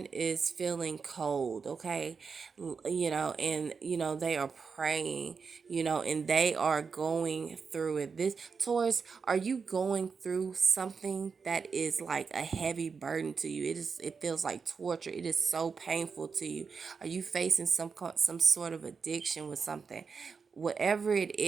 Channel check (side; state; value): left; quieter; 5.4 dB